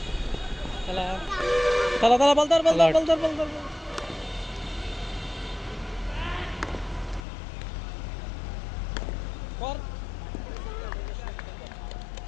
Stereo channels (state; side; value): drops out; right; at 7.2 s